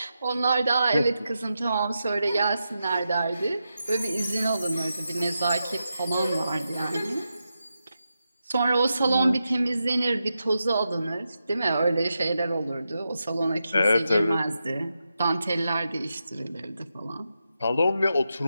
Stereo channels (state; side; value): inverted; both; correlation -0.88